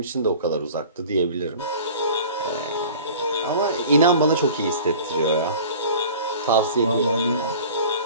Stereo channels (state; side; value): inverted; both; correlation -0.43